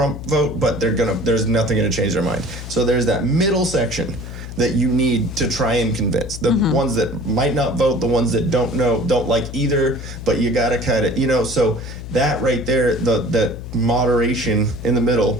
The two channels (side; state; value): left; noise; hum, 10 dB below the sound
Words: vote, but there's nothing gonna change their mind. So there's that middle section that you need to try and convince. The ones that might not vote, the ones that don't like either, but you gotta kind of, you know, so that right there, that moderation in the